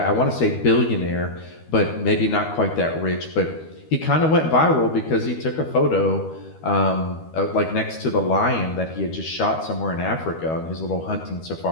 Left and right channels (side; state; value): right; late; 13 ms